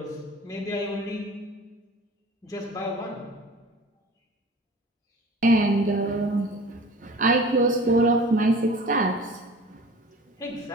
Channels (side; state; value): both; normal; correlation 0.43